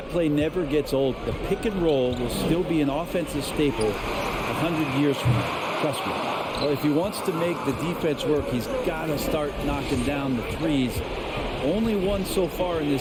play never gets old. The pick and roll will still be an offensive staple 100 years from now. Trust me. Well, if he wants to make the defense work, he's got to start knocking down the threes. Only one so far in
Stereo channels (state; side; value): identical; both; correlation 1.00